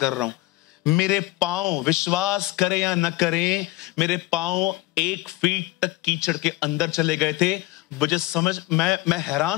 रहा हूं। मेरे पांव, विश्वास करें या न करें, मेरे पांव 1 फीट तक कीचड़ के अंदर चले गए थे। मुझे मैं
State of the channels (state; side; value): quieter; right; 19.3 dB